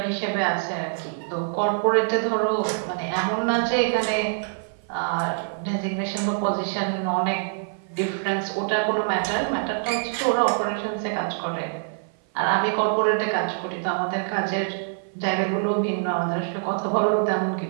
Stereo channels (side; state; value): left; silent; 56 dB below the other